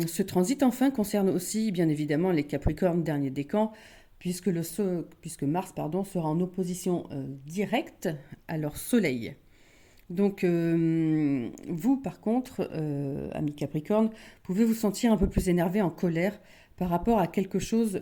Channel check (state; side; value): identical; both; correlation 1.00